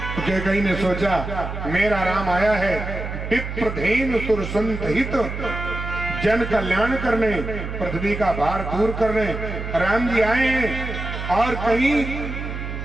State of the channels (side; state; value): right; noise; hum, 6 dB below the sound